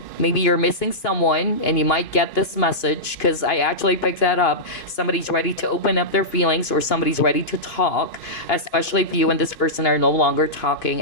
Maybe you're missing someone and you might get this message, because I actually picked that up. Somebody's ready to open up their feelings, or somebody's ready to talk, especially if you and this person are no longer talking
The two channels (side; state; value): right; late; 2.5 ms